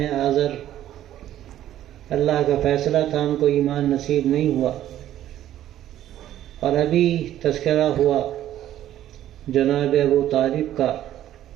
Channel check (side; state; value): left; quieter; 12.4 dB